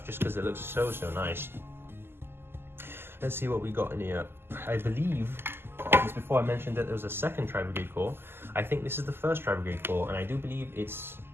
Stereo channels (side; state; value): left; late; 0.11 ms